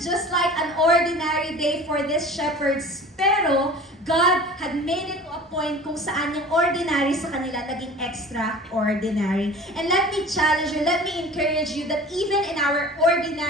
just like an ordinary day for these shepherds. Pero, God had made it to a point kung saan yung ordinary sa kanila naging extraordinary. And let me challenge you, let me encourage you that even in our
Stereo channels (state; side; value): normal; both; correlation 0.41